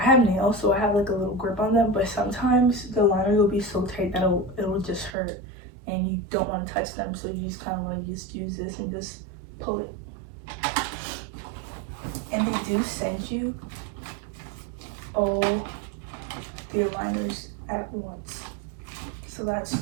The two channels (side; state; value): left; drops out; at 5.2 s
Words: have nails, so I have like a little grip on them, but sometimes the liner will be so tight that it'll just hurt, and you don't want to touch them, so you just kind of want to just use this and just pull it. And they do send you all the aligners at once, so that's